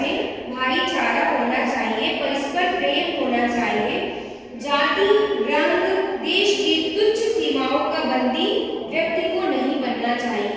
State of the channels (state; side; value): identical; both; correlation 1.00